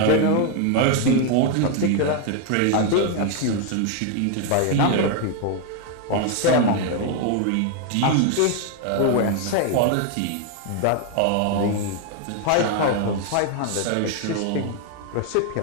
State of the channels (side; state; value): both; different; correlation 0.01